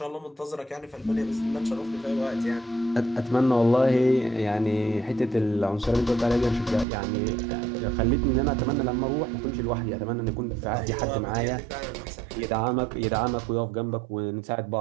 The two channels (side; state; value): left; drops out; at 6.9 s